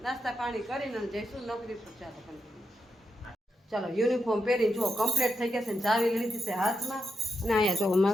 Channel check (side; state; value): both; normal; correlation 0.84